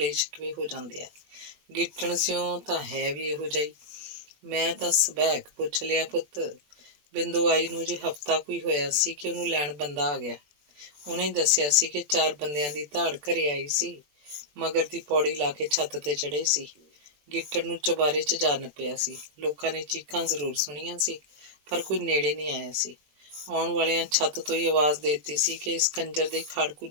ਸ਼ਿਕਵੇ ਹੋ ਜਾਂਦੇ ਆ। ਗਿੱਟਣ ਸਿਓ ਤਾਂ ਹੈ ਵੀ ਇਹੋ ਜਿਹੀ। ਮੈਂ ਤਾਂ ਸਬੈਕ ਪੁੱਛ ਲਿਆ ਪੁੱਤ। ਬਿੰਦੂ ਆਈ ਨੂੰ ਅਜੇ ਹਫ਼ਤਾ ਕੋਈ ਹੋਇਆ ਸੀ ਕਿ ਉਹਨੂੰ ਲੈਣ ਬੰਦਾ ਆ ਗਿਆ। ਉਹਨੇ ਦੱਸਿਆ ਸੀ ਕਿ 4 ਬੰਦਿਆਂ ਦੀ ਧਾੜ ਘਰੇ ਆਈ ਸੀ, ਮਗਰ ਦੀ ਪੌੜੀ ਲਾ ਕੇ ਛੱਤ ਤੇ ਚੜ੍ਹੇ ਸੀ। ਗਿੱਟਣ ਨੂੰ ਚੁਬਾਰੇ 'ਚ ਜਾ ਨੱਪਿਆ ਸੀ। ਲੋਕਾਂ ਨੇ ਚੀਕਾਂ ਜ਼ਰੂਰ ਸੁਣੀਆਂ ਸੀ, ਪਰ ਕੋਈ ਨੇੜੇ ਨਹੀਂ ਆਇਆ ਸੀ। ਆਉਣ ਵਾਲਿਆਂ ਛੱਤ ਤੋਂ ਹੀ ਆਵਾਜ਼ ਦੇ ਦਿੱਤੀ ਸੀ ਕਿ ਇਸ ਕੰਜਰ ਦੇ ਖਾੜਕੂ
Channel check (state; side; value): late; left; 20 ms